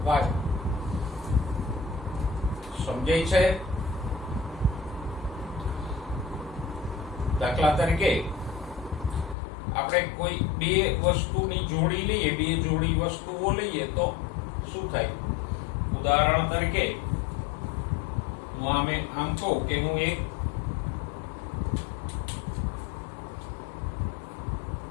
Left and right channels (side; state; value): right; drops out; at 9.3 s